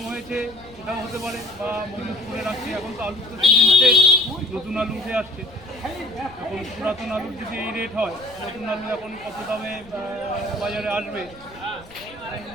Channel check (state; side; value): noise; left; rumble, 22 dB below the sound